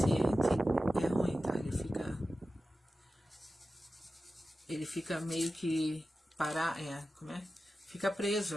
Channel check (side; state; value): both; normal; correlation 0.93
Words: é ruim, tá? Ele fica meio que como é? Fica preso